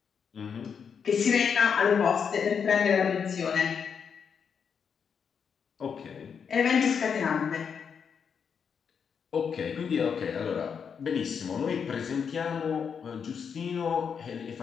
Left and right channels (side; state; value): right; quieter; 6.7 dB